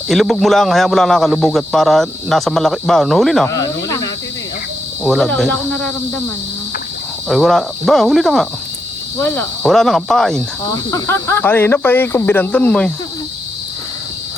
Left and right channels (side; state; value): both; normal; correlation 0.83